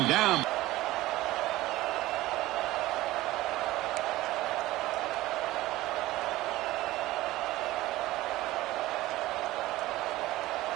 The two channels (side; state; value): left; quieter; 17.4 dB